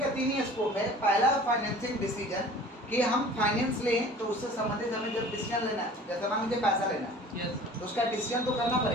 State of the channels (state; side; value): normal; both; correlation 0.45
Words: का तीन ही स्कोप है। पहला फाइनेंसिंग डिसीजन कि हम फाइनेंस लें तो उससे संबंधित हमें जब डिसीजन लेना है, जैसे मान लीजिए पैसा लेना है तो उसका डिसीजन तो करना